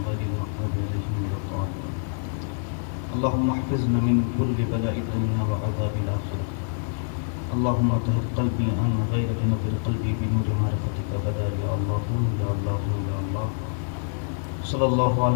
غير المغضوب عليهم ولا الضالين اللهم احفظنا من كل بلاء الدنيا وعذاب الاخره اللهم طهر قلبي عن غيرك نور قلبي بنور معرفتك غدا يا الله يا الله يا الله صلی اللہ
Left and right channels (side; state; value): right; silent; 58 dB below the other